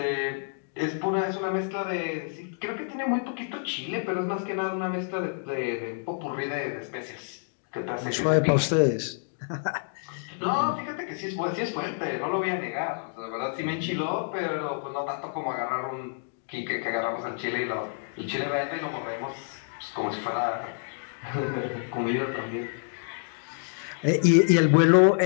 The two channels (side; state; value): right; silent; digital silence